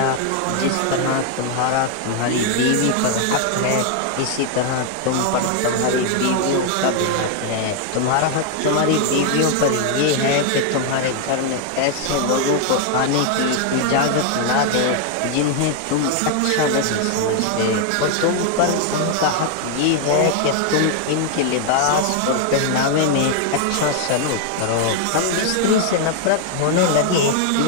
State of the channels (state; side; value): different; both; correlation 0.00